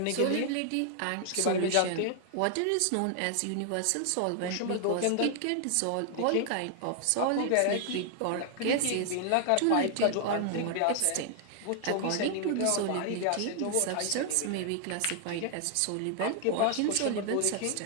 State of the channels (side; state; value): both; different; correlation 0.00